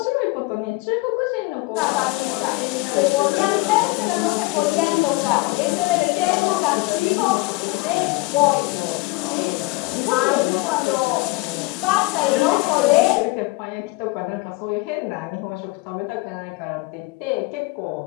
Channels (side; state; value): right; quieter; 22.6 dB